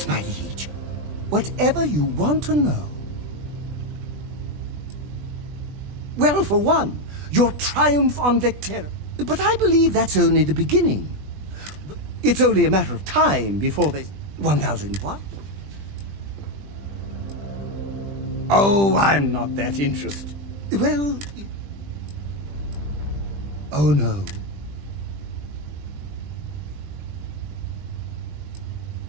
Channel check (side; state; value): left; late; 20 ms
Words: my liege. Whatever you want to know. Well, for one, your triumph on Vectera. But I believe that's only the beginning. It's only a matter of time before there's 1,000 what? Oh, I'm not that interested. Well... Oh, no.